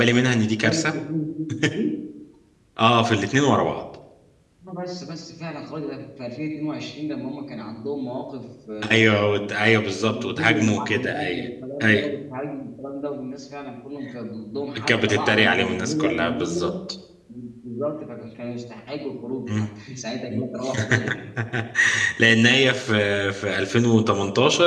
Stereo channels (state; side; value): identical; both; correlation 1.00